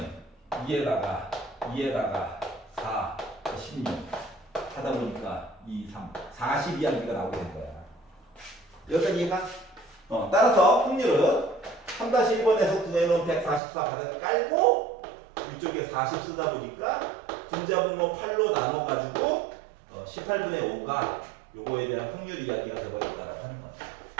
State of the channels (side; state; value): left; drops out; at 13.6 s